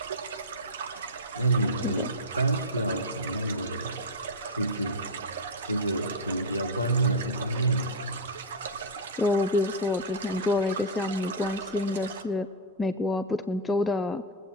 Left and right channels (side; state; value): both; normal; correlation -0.01